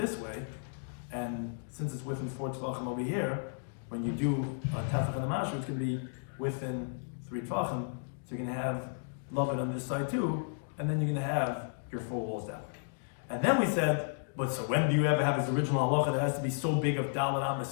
way, and since it's within 4 tefachim over here, when you do a tefach and the mashu, it's going to be within 3 tefachim, so you're going to have lavud on this side too, and then you're going to have your 4 walls down. And then we said, but so when do you ever have this original halacha that has to be so big of dalet amas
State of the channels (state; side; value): silent; right; digital silence